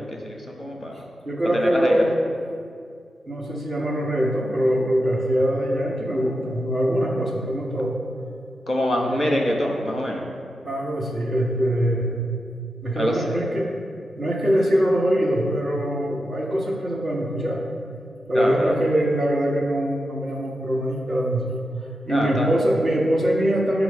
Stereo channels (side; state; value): both; normal; correlation 0.88